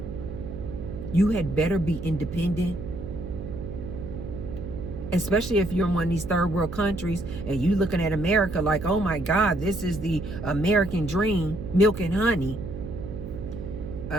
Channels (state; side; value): noise; right; hum, 9 dB below the sound